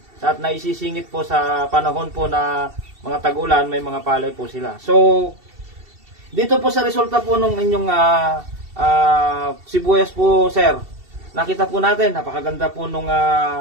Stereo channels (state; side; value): late; left; 2.7 ms